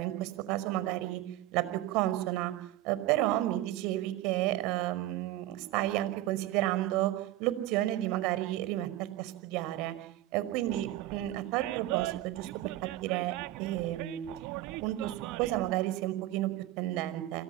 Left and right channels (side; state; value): left; quieter; 15.0 dB